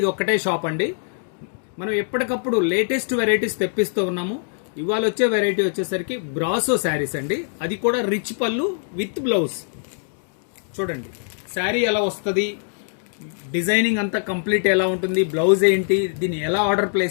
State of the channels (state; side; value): silent; right; digital silence